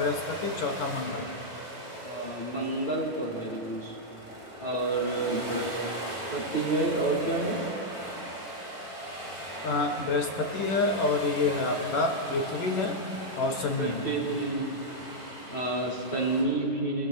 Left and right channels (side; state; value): right; late; 11 ms